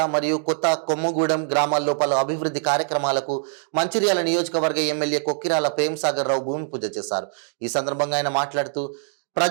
మరియు కొత్త కొమ్మగూడెం గ్రామాల్లో పలు అభివృద్ధి కార్యక్రమాలకు మంచిర్యాల నియోజకవర్గ ఎమ్మెల్యే కొక్కిరాల ప్రేమ్సాగర్ రావు భూమి పూజ చేశారు. ఈ సందర్భంగా ఆయన మాట్లాడుతూ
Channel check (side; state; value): left; silent; digital silence